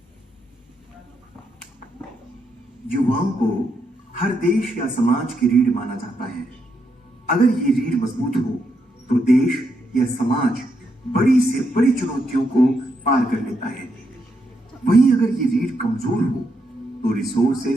युवाओं को हर देश या समाज की रीढ़ माना जाता है। अगर ये रीढ़ मजबूत हो तो देश या समाज बड़ी से बड़ी चुनौतियों को पार कर लेता है। वहीं अगर ये रीढ़ कमजोर हो तो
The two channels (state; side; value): normal; both; correlation 0.80